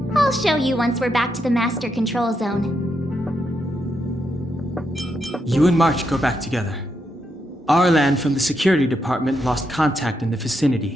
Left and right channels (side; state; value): both; normal; correlation 0.82